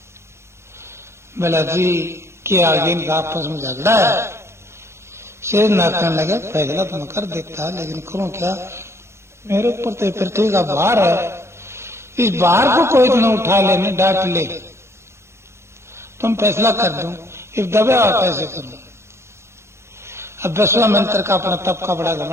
बोला जी के आगे इनका आपस में झगड़ा है। शेषनाग कहने लगे फैसला तो मैं कर देता, लेकिन करूं क्या, मेरे ऊपर तो पृथ्वी का भार है, इस भार को कोई तो न उठा ले, डांट ले, तुम फैसला कर दो, इस दबे कैसे करूं। अब विश्वामित्र का अपना तप का बड़ा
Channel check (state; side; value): late; left; 0.13 ms